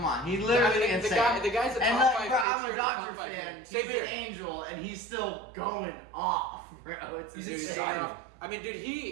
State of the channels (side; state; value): left; drops out; at 2.5 s